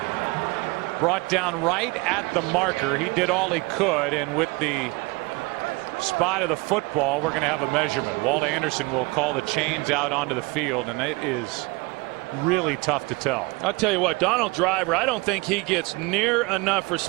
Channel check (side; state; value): left; quieter; 25.7 dB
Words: brought down right at the marker. He did all he could, and with the spot of the football, we're going to have a measurement. Walt Anderson will call the chains out onto the field, and it is really tough to tell. I'll tell you what, Donald Driver, I don't think he gets near enough